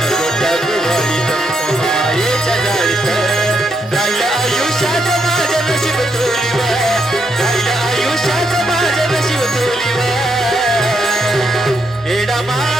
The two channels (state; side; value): normal; both; correlation 0.78